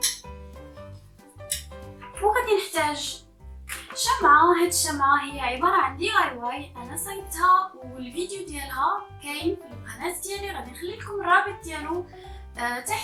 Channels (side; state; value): both; identical; correlation 1.00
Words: وغادي نحتاج شمعة. هاد الشمعة هي عبارة عن دي اي واي انا صايبتها والفيديو ديالها كاين في القناة ديالي، غادي نخلي لكم الرابط ديالو